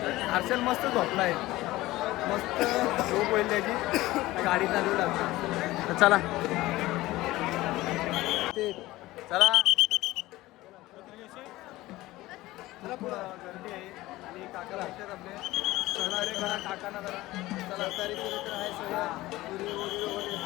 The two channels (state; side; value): quieter; right; 17.9 dB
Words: हर्षल मस्त झोपला आहे मस्त झोप होईल त्याची गाडी चालू लागते. चला ते चला चला पुढं गर्दी आहे आणि काका लागतात आपले चला रे घरा काकांना जरा चला तरी तर आहे सगळं पुरी वगैरे